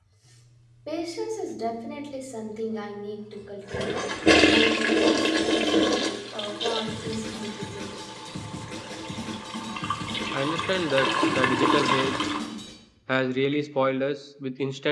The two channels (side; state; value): both; identical; correlation 1.00